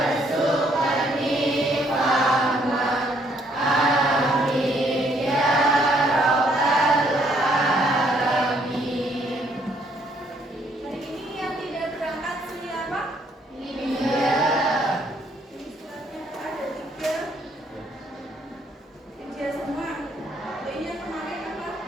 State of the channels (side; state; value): both; normal; correlation 0.68